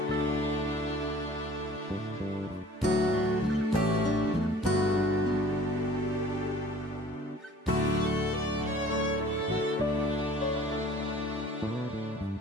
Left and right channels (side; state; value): both; normal; correlation 0.49